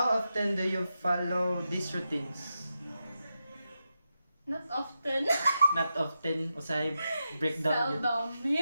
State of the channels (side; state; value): both; inverted; correlation -0.87